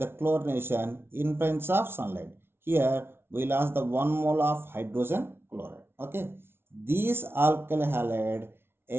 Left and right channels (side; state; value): left; late; 0.12 ms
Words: chlorination in presence of sunlight. Here we lost the 1 mole of hydrogen chloride. Okay, these alkyl halide